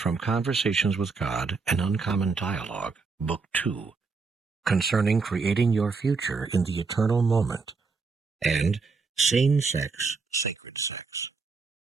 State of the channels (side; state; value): left; quieter; 4.5 dB